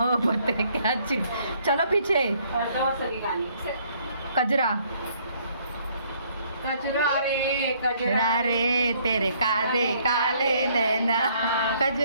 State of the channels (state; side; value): inverted; both; correlation -0.64